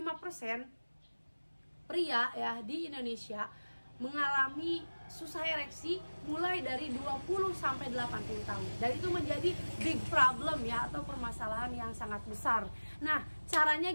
pria ya di Indonesia mengalami susah ereksi mulai dari 20 sampai 80 tahun. Dan itu menjadi big problem ya, atau permasalahan yang sangat besar. Nah, caranya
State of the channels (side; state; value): both; inverted; correlation -1.00